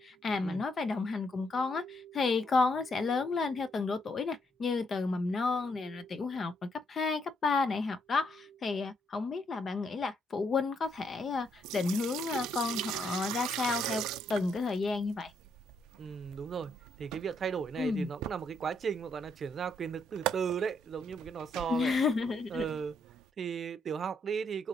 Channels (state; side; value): normal; both; correlation 0.74